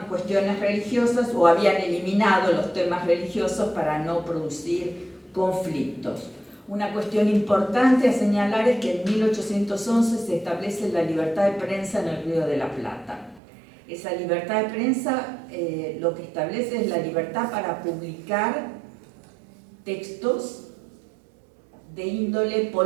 cuestiones religiosas o habían eliminado los temas religiosos para no producir conflictos. Una cuestión importante a señalar es que en 1811 se establece la libertad de prensa en el Río de la Plata. Esa libertad de prensa lo que establece es la libertad para publicar textos de índole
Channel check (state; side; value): drops out; left; at 13.4 s